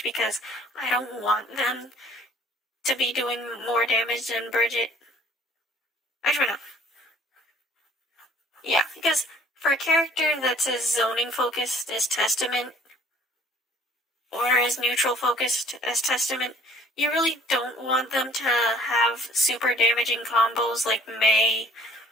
because I don't want them to be doing more damage than Bridget. Actually, no. Yeah, because For a character that's as zoning focused as Testament, or as neutral focused as Testament, you really don't want them to have super damaging combos like Mei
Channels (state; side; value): normal; both; correlation 0.57